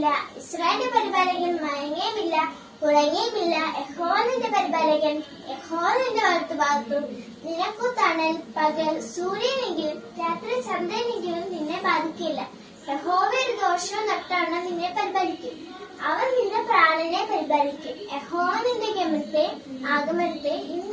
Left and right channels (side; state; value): both; identical; correlation 1.00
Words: ഇസ്രായേലിന്റെ പരിപാലകൻ മയങ്ങുകയുമില്ല, ഉറങ്ങുകയുമില്ല. യഹോവ നിന്റെ പരിപാലകൻ, യഹോവ നിന്റെ വലത്തുഭാഗത്തും. നിനക്കു തണൽ പകൽ സൂര്യനെങ്കിലും രാത്രി ചന്ദ്രനെങ്കിലും നിന്നെ ബാധിക്കില്ല. യഹോവ ഒരു ദോഷവും നട്ടാണ് നിന്നെ പരിപാലിക്കും. അവൻ നിന്റെ പ്രാണനെ പരിപാലിക്കും. യഹോവ നിന്റെ ആഗമനത്തെ